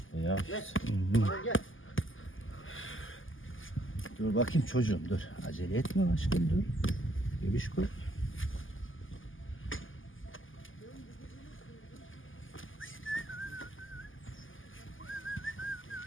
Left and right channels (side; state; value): right; late; 0.58 ms